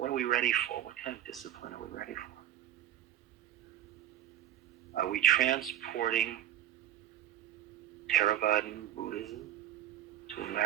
are we ready for? What kind of discipline are we ready for? Are we transporting Theravadan Buddhism to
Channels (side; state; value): left; quieter; 12.1 dB